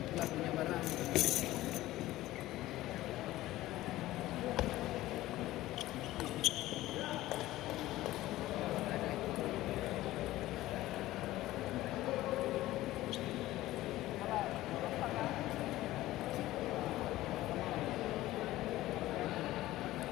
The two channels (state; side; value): quieter; right; 16.2 dB